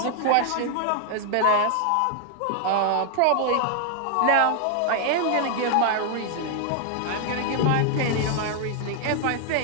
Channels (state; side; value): different; both; correlation 0.00